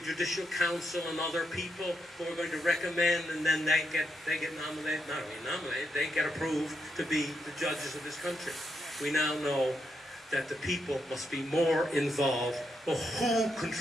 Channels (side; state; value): both; normal; correlation 0.81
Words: Judicial Council and other people who are going to recommend, and then they get nominated, not only nominated, they get approved to be the judges of this country. We now know that the people must be more involved. Well, who